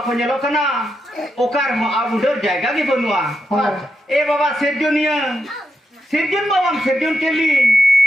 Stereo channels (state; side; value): normal; both; correlation 0.85